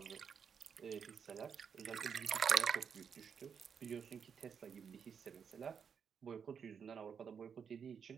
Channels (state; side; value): quieter; left; 6.9 dB